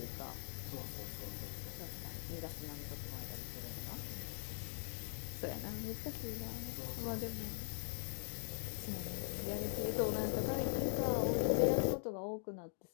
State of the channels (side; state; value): right; silent; digital silence